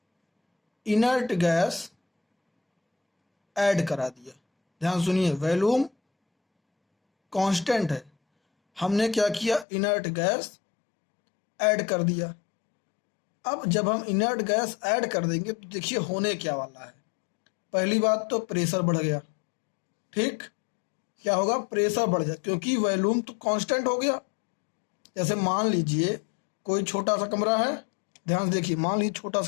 इनर्ट गैस ऐड करा दिया। ध्यान सुनिए, वॉल्यूम कांस्टेंट है, हमने क्या किया, इनर्ट गैस ऐड कर दिया। अब जब हम इनर्ट गैस ऐड कर देंगे तो देखिए होने क्या वाला है। पहली बात तो प्रेशर बढ़ गया, ठीक, क्या होगा, प्रेशर बढ़ जाए, क्योंकि वॉल्यूम तो कांस्टेंट हो गया। जैसे मान लीजिए कोई छोटा सा कमरा है, ध्यान से देखिए, मान लीजिए छोटा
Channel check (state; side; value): drops out; right; at 9.7 s